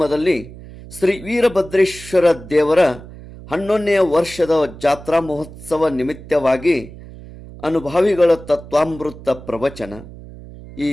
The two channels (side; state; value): right; noise; hum, 16 dB below the sound